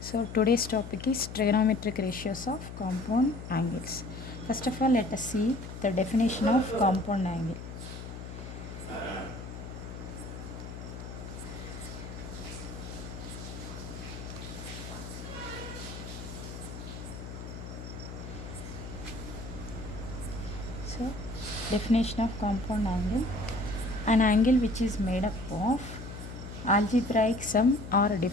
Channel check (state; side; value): noise; left; hum, 10 dB below the sound